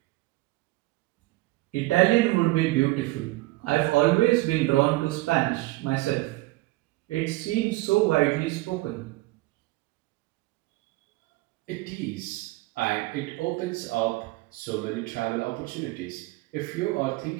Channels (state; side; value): quieter; left; 20.0 dB